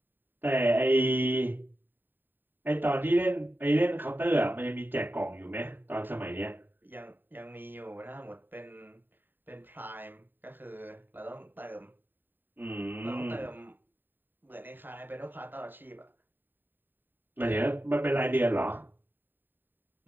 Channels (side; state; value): left; late; 0.093 ms